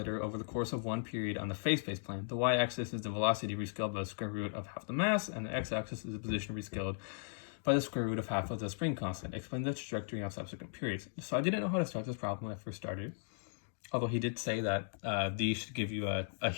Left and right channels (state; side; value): silent; right; digital silence